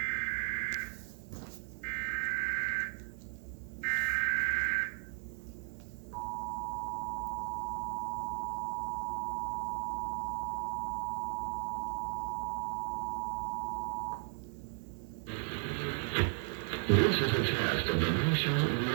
This is a test of the National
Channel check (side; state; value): left; silent; 54 dB below the other